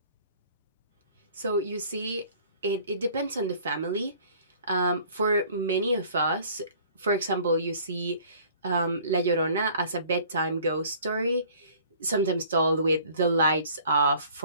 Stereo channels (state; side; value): inverted; both; correlation -0.52